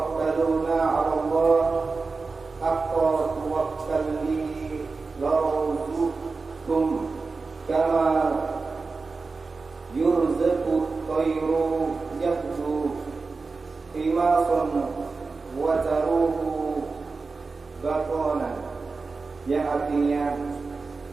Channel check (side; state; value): left; quieter; 4.2 dB